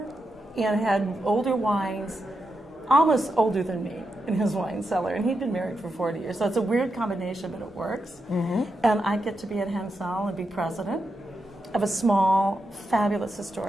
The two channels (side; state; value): both; normal; correlation 0.86